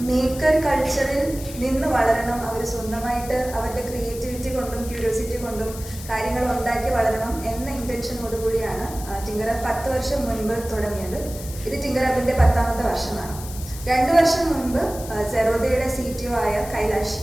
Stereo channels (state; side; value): noise; left; hiss, 14 dB below the sound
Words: മേക്കർ കൾച്ചറിൽ നിന്ന് വളരണം, അവർ സ്വന്തമായിട്ട് അവരുടെ ക്രിയേറ്റിവിറ്റി കൊണ്ടും ക്യൂരിയോസിറ്റി കൊണ്ടും കാര്യങ്ങൾ ഉണ്ടാക്കി വളരണം എന്ന ഇൻറ്റൻഷനോടുകൂടിയാണ് തിങ്കർ ഹബ് 10 വർഷം മുൻപ് തുടങ്ങിയത്. ഇത് തിങ്കർ ഹബിൻ്റെ 10ാമത്തെ വർഷമാണ്. 2 വർഷം മുൻപ് സെറോദയുടെ CTO ആയ കൈലാഷ്,